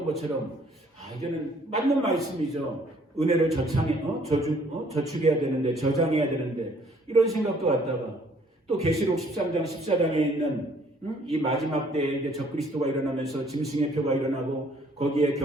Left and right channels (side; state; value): both; normal; correlation 0.61